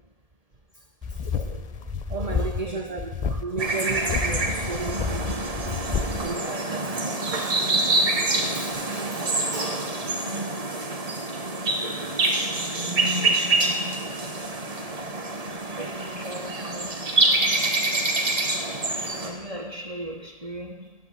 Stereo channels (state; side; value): late; left; 1.7 ms